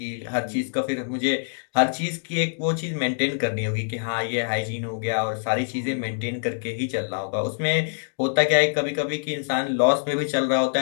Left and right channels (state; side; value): silent; right; digital silence